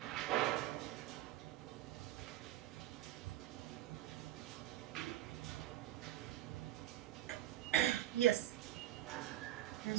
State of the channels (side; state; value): left; quieter; 14.0 dB